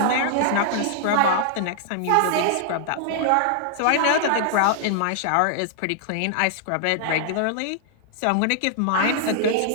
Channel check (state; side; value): different; both; correlation -0.01